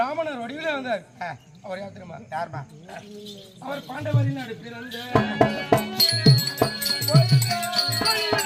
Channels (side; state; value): both; identical; correlation 1.00